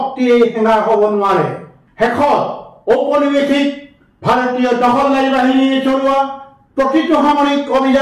হেঙাৰ হ'ব নোৱাৰে। শেষত ঔপনিৱেশিক ভাৰতীয় দখলদাৰী বাহিনীয়ে চলোৱা প্ৰতিটো সামৰিক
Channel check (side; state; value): both; identical; correlation 1.00